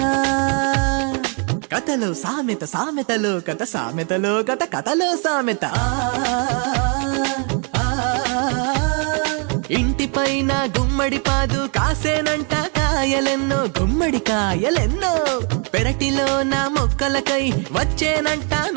కథలో సామెత సామెతలో కథ సామెతలో కథ కథలో సామెత. ఇంటిపైన గుమ్మడి పాదు కాసేనంట కాయలెన్నో గుమ్మడి కాయలెన్నో పెరటిలో నా మొక్కలకై వచ్చేనంట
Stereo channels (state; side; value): quieter; left; 38.1 dB